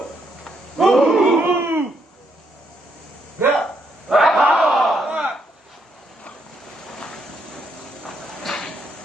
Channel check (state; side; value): normal; both; correlation 0.75